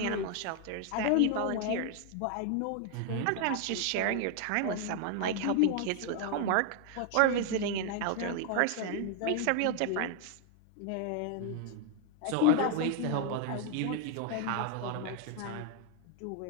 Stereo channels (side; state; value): both; different; correlation 0.00